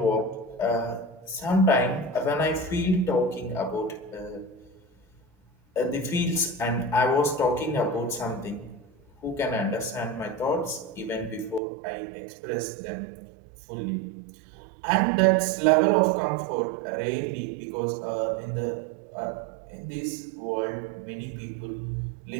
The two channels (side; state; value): left; drops out; at 11.6 s